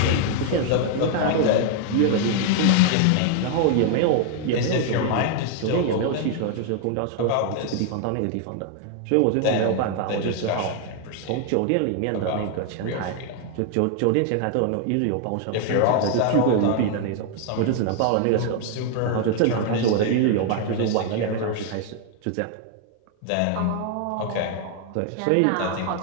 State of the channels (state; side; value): different; both; correlation 0.00